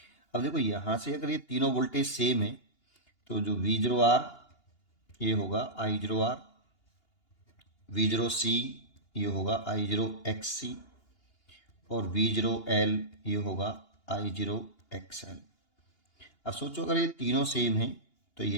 अब देखो यहाँ से अगर ये तीनों वोल्टेज सेम है, तो जो V0R ये होगा I0R, V0C ये होगा I0XC, और V0L ये होगा I0XL. अब सोचो अगर ये तीनों सेम हैं तो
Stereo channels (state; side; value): late; right; 2.8 ms